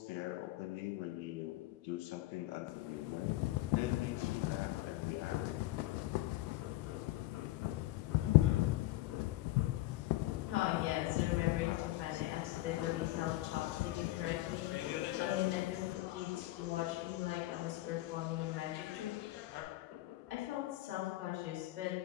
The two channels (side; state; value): right; quieter; 17.1 dB